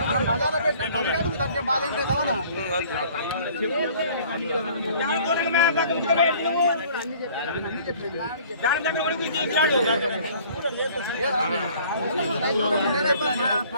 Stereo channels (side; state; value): both; inverted; correlation -0.53